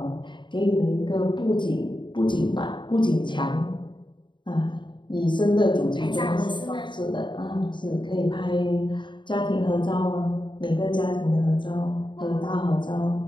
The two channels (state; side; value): late; right; 0.23 ms